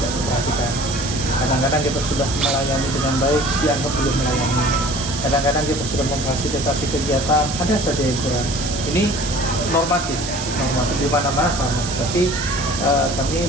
memperhatikan. Kadang-kadang kita sudah melayani dengan baik, dianggap belum melayani. Kadang-kadang kita sudah memfasilitasi kegiatan, ada saja yang kurang. Ini normatif di mana-mana sama. Tapi kami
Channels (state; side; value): noise; right; hiss, 7 dB below the sound